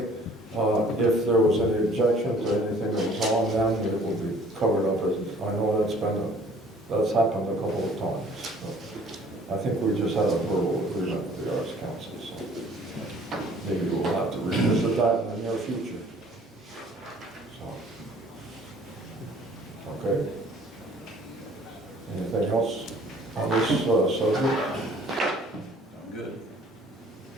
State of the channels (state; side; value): normal; both; correlation 0.55